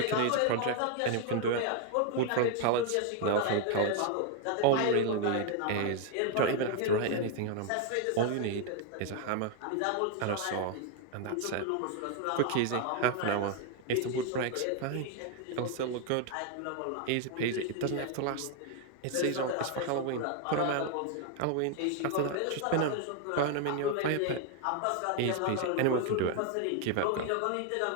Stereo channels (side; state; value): both; different; correlation 0.00